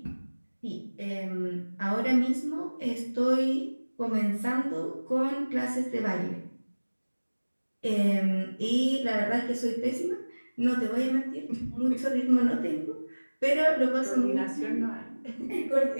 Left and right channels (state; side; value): inverted; both; correlation -1.00